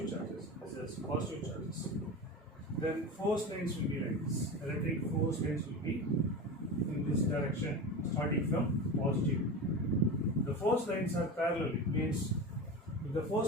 charges. Then force lines will be like this. Electric force lines will be in this direction, starting from positive. The force lines are parallel. It means if the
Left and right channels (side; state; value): both; normal; correlation 0.26